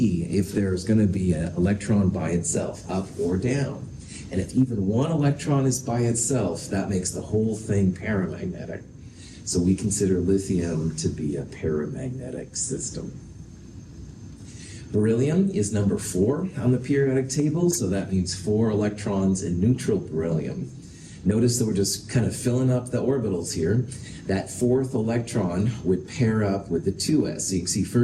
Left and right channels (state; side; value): identical; both; correlation 1.00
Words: if there's going to be an electron by itself, up or down. And if even one electron is by itself, that makes the whole thing paramagnetic. So we consider lithium to be a paramagnetic system. Beryllium is number 4 on the periodic table, so that means 4 electrons in neutral beryllium. Notice that we're just kind of filling up the orbitals here. That 4th electron would pair up with the 2s. So you can see